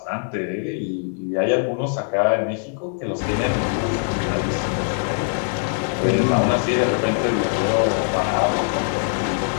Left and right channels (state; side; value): silent; right; digital silence